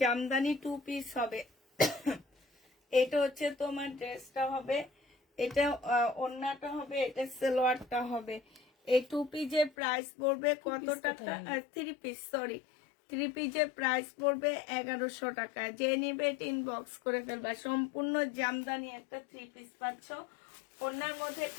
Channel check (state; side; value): drops out; right; at 9.7 s